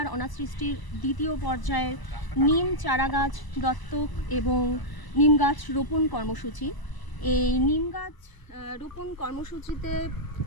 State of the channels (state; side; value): late; right; 1.0 ms